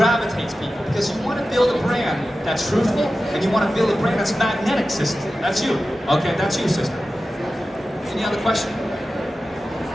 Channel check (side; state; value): both; normal; correlation 0.94